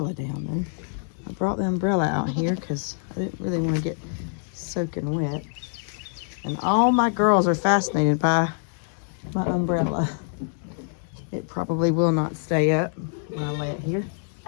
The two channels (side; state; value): right; silent; 57 dB below the other